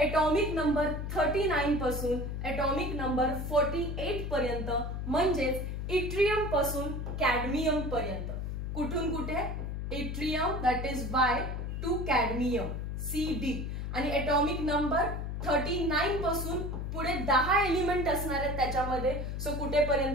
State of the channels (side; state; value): left; noise; hum, 4 dB below the sound